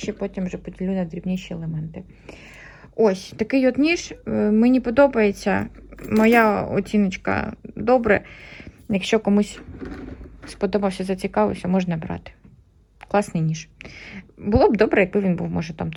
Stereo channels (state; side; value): identical; both; correlation 1.00